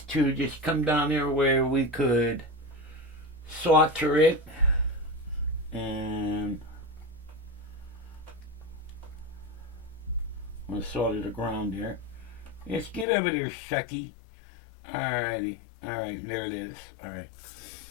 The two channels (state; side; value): drops out; right; at 13.1 s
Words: to just come down here where we could solder it. And I'm going to solder the ground there. Let's get over there, Shucky. Alrighty. Alright, there it is. Alright.